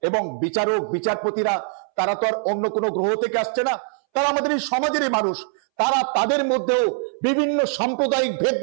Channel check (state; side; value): silent; left; 64 dB below the other